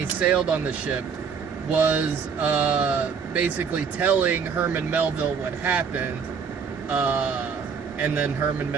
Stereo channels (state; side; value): quieter; left; 6.2 dB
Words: sailed on the ship, was basically telling Herman Melville what happened, and then Herman